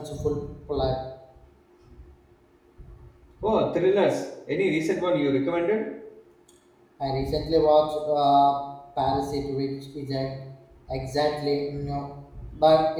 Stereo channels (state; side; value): identical; both; correlation 1.00